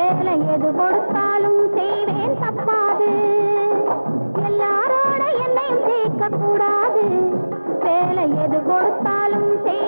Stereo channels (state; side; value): inverted; both; correlation -1.00